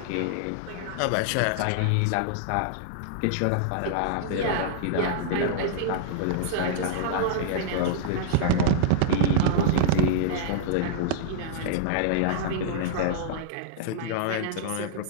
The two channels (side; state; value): both; different; correlation -0.02